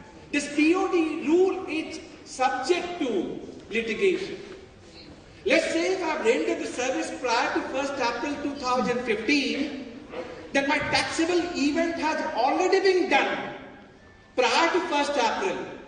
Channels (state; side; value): identical; both; correlation 1.00